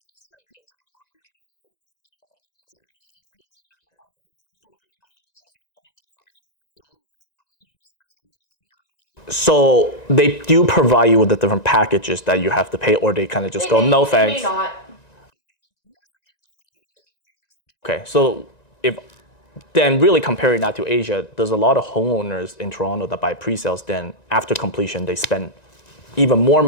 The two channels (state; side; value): late; right; 1.9 ms